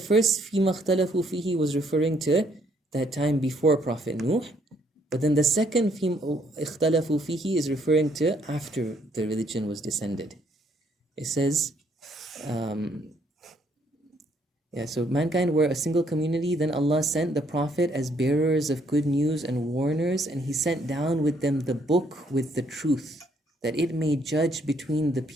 فِيمَا اخْتَلَفُوا فِيهِ was referring to that time before Prophet Nuh. But then the second فِيمَا اخْتَلَفُوا فِيهِ is referring to after the religion was descended. It says, so mankind were a single community. Then Allah sent the Prophet as bearers of good news and warners, and He sent down with them the book with the truth, that it may judge between the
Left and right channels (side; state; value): both; normal; correlation 0.68